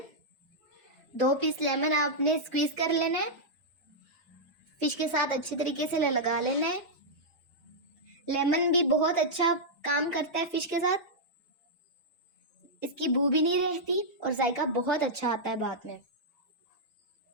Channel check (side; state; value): both; normal; correlation -0.08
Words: 2 पीस लेमन आपने स्क्वीज कर लेना है, फिश के साथ अच्छे तरीके से लगा लेना है। लेमन भी बहुत अच्छा काम करता है फिश के साथ, इसकी बू भी नहीं रहती और जायका बहुत अच्छा आता है बाद में।